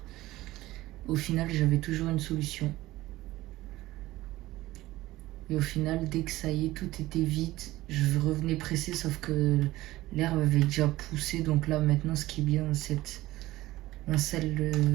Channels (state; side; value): quieter; left; 17.2 dB